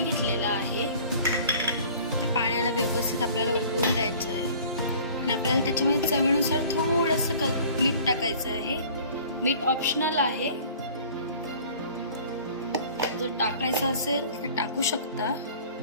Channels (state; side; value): inverted; both; correlation -0.48